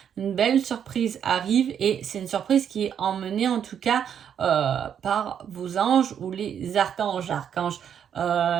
Une belle surprise arrive et c'est une surprise qui est emmenée en tout cas par vos anges ou les archanges. Archange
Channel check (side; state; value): left; quieter; 8.5 dB